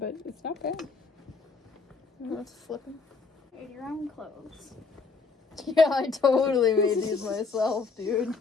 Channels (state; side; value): quieter; right; 4.6 dB